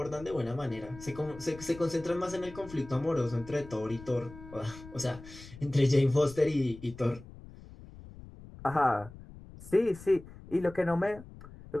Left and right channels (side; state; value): left; noise; rumble, 17 dB below the sound